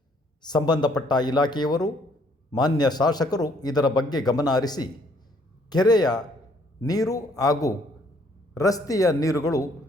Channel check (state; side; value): normal; both; correlation 0.64